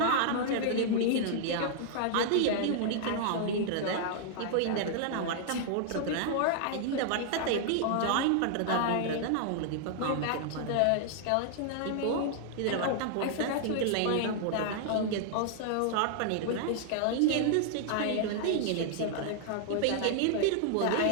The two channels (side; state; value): both; different; correlation -0.01